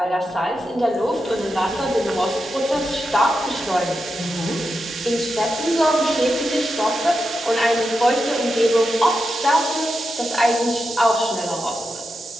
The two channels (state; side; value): normal; both; correlation 0.88